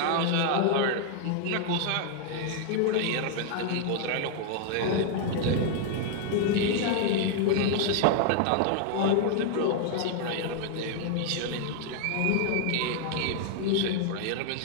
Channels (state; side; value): different; both; correlation 0.00